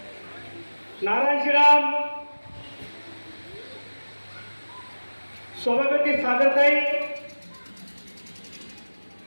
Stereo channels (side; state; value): both; inverted; correlation -1.00